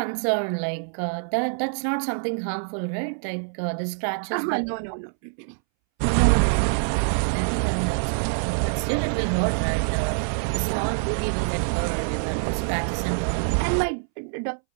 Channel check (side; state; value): left; silent; 62 dB below the other